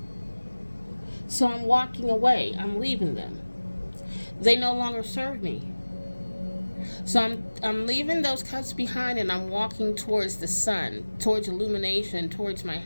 So I'm walking away. I'm leaving them. They no longer serve me. So I'm leaving those cups behind, and I'm walking towards the sun, towards illumination, towards my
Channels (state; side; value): inverted; both; correlation -1.00